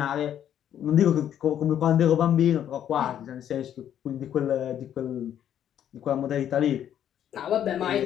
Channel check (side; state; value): right; quieter; 10.2 dB